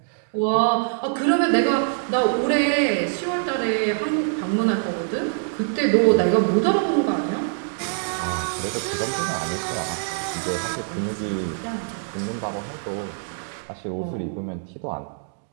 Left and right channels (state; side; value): silent; left; digital silence